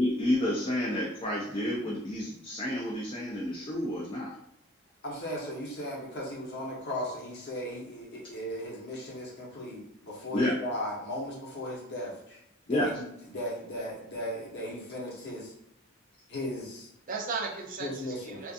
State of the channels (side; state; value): both; normal; correlation 0.45